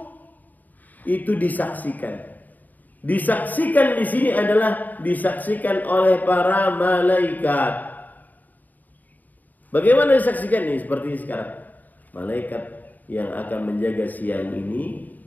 itu disaksikan. Disaksikan di sini adalah disaksikan oleh para malaikat. Bagaimana disaksikan ini? Seperti sekarang, malaikat yang akan menjaga siang ini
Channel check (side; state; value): right; late; 0.083 ms